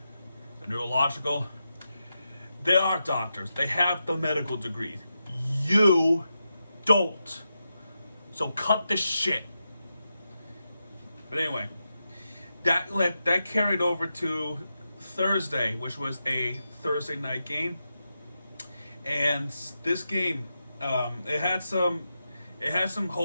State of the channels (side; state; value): both; inverted; correlation -0.88